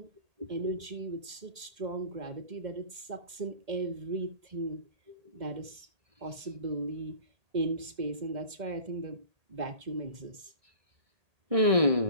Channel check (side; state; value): left; late; 2.1 ms